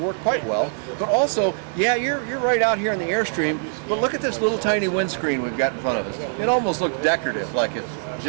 quite well. But also, yeah, you're right out here in the Airstream, but look at this little tiny windscreen we've got in front of us. It almost looks decorative, like it's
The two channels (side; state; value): left; silent; digital silence